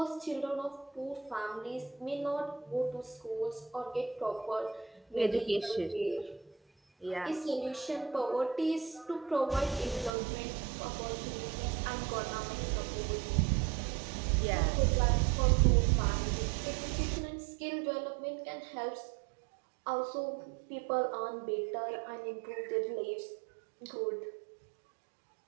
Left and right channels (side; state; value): left; drops out; at 10.1 s